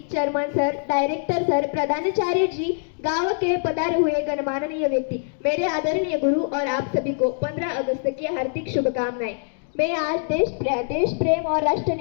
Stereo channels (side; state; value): right; silent; digital silence